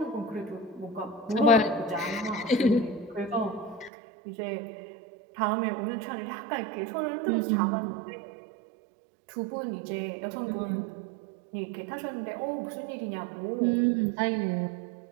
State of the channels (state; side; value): drops out; left; at 3.9 s